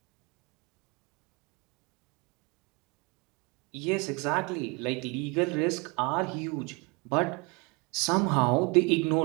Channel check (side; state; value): left; quieter; 28.8 dB